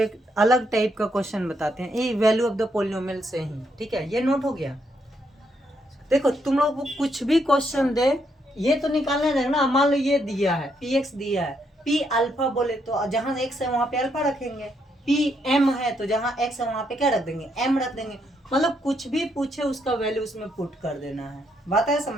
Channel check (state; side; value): normal; both; correlation 0.76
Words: अलग टाइप का क्वेश्चन बताते हैं, ये वैल्यू ऑफ द पोलिनोमियल से ही, ठीक है, ये नोट हो गया। देखो तुम लोग को कुछ भी क्वेश्चन दे, ये तो निकालना है ना, मान लो ये दिया है px दिया है, p अल्फा बोले तो जहां x है वहां पे अल्फा रखेंगे, p m है तो जहां x है वहां पे क्या रख देंगे, m रख देंगे। मतलब कुछ भी पूछे उसका वैल्यू उसमें पुट कर देना है, बात है